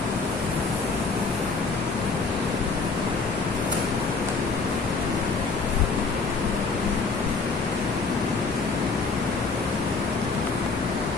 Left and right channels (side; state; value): right; quieter; 4.3 dB